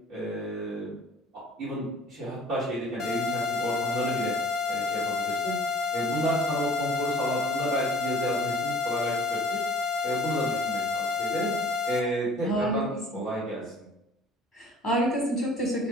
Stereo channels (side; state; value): both; normal; correlation 0.49